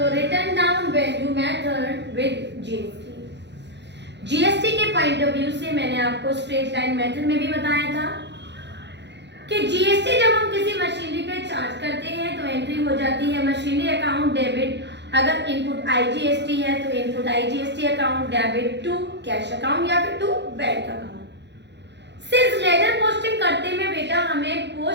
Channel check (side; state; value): left; late; 0.51 ms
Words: written down value method with GST. GST के पॉइंट ऑफ व्यू से मैंने आपको स्ट्रेट लाइन मेथड में भी बताया था कि जीएसटी जब हम किसी मशीनरी पे चार्ज करते हैं तो एंट्री हो जाती है मशीनरी अकाउंट डेबिट। अगर इनपुट आईजीएसटी है तो input IGST account debit to cash account या फिर to bank account. Since ledger posting करते में बेटा हमें